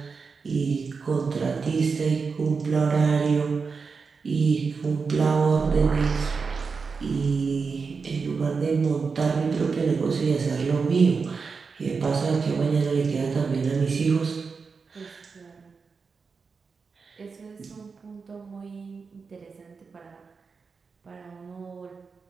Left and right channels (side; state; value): left; quieter; 5.0 dB